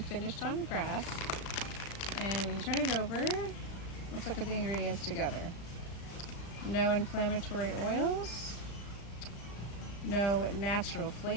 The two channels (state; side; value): late; right; 35 ms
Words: finished on grass. And when you turn it over, let's look at the ingredients together. No inflammatory oils, no natural